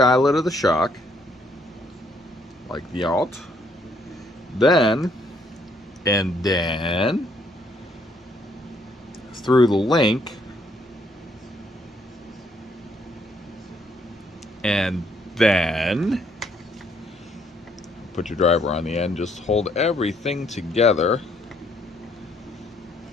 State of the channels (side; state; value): both; normal; correlation 0.69